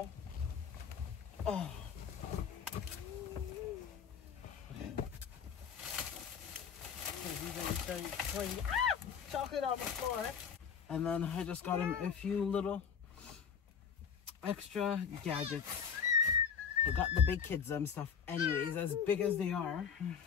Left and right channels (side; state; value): right; quieter; 7.1 dB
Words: Oh. Okay. Chocolate on the floor. And then I just got him a few little extra gadgets. I got the big kids stuff anyways, as big as they are.